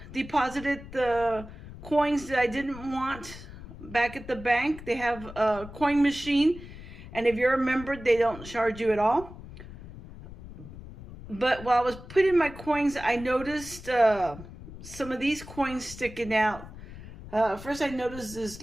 deposited the coins that I didn't want back at the bank. They have a coin machine, and if you're a member, they don't charge you at all. But while I was putting my coins, I noticed some of these coins sticking out. First, I noticed this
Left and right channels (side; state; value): left; noise; rumble, 14 dB below the sound